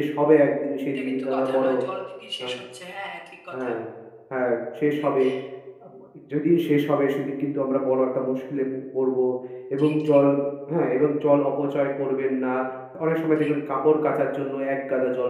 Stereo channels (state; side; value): identical; both; correlation 1.00